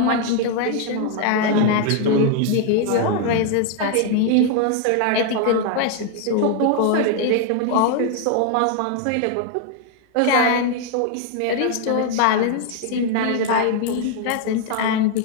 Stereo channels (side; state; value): both; different; correlation 0.00